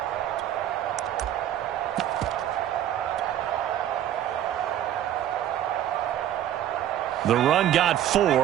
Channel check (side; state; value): left; quieter; 11.4 dB